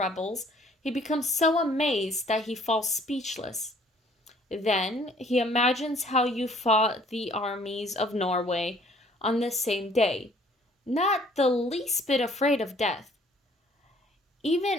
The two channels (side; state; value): both; normal; correlation 0.59